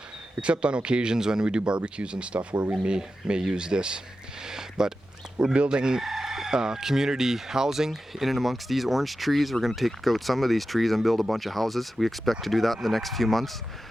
except on occasions when we do barbecues and stuff where we may use this. But we're building community housing in and amongst these orange trees. We're going to take out some of these trees and build a bunch of houses. We expect to do that in the next few months.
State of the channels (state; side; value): normal; both; correlation 0.92